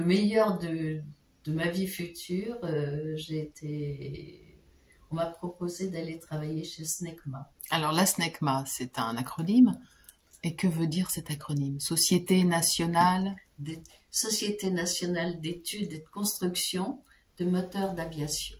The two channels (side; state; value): both; identical; correlation 1.00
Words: meilleur de ma vie future, on m'a proposé d'aller travailler chez SNECMA. Alors la SNECMA, c'est un acronyme. Et que veut dire cet acronyme? Société nationale d'études et de construction de moteurs d'aviation.